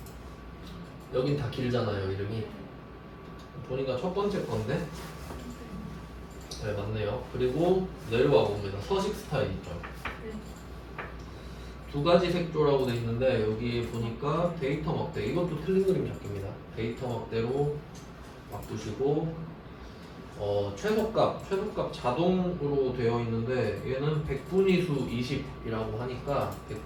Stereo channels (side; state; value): both; identical; correlation 1.00